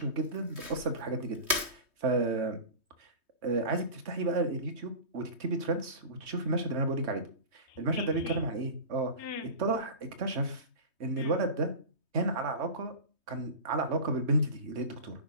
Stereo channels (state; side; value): late; left; 3.2 ms